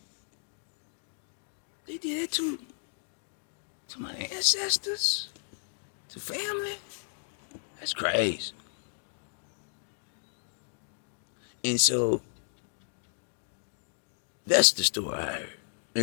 They did it to my ancestors, to family? That's crazy. And so that's the story I heard.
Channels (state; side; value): silent; right; digital silence